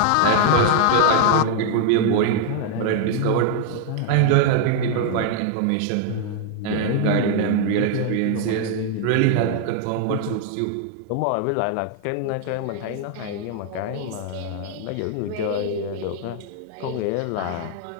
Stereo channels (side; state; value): both; different; correlation 0.00